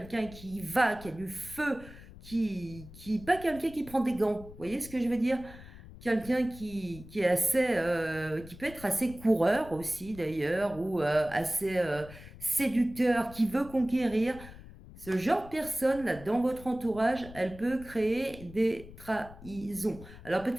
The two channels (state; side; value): noise; left; rumble, 17 dB below the sound